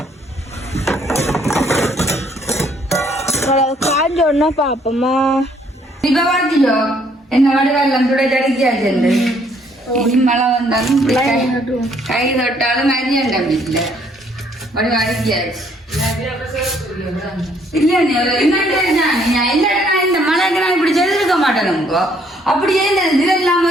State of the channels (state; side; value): normal; both; correlation 0.65